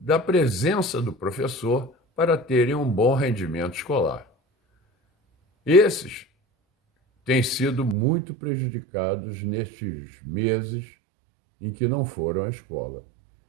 presença do professor para terem um bom rendimento escolar. Esses têm sido muito prejudicados nestes meses em que não foram à escola.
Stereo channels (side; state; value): left; drops out; at 8.0 s